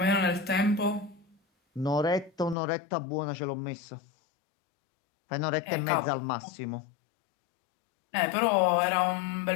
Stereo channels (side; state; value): right; drops out; at 2.6 s